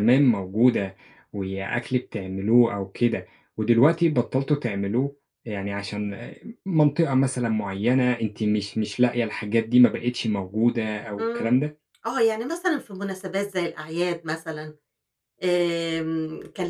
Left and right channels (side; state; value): both; identical; correlation 1.00